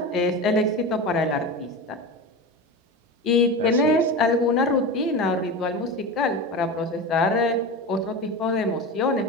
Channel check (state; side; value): normal; both; correlation 0.25